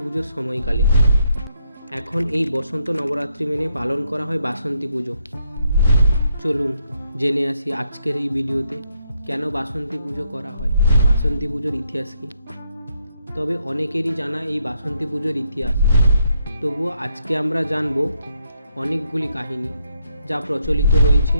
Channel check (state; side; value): inverted; both; correlation -0.76